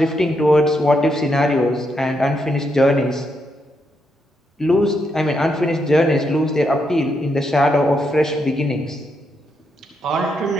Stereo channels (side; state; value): both; normal; correlation 0.80